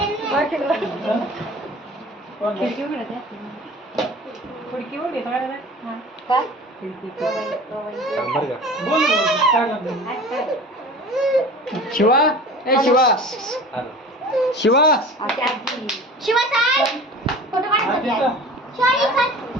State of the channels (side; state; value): both; normal; correlation 0.40